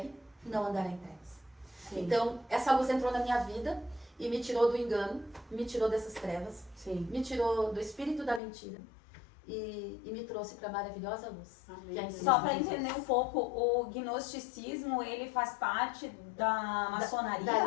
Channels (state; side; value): drops out; right; at 8.4 s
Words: não andará em trevas. Sim. Então, essa luz entrou na minha vida e me tirou do engano, me tirou dessas trevas, Sim. me tirou do espírito da mentira e me trouxe para a maravilhosa luz. Amém. Que é em Só para Cristo entender Jesus. um pouco, o gnosticismo, ele faz parte da